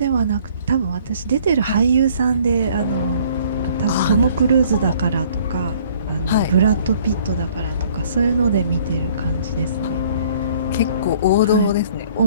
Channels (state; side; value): inverted; both; correlation -0.57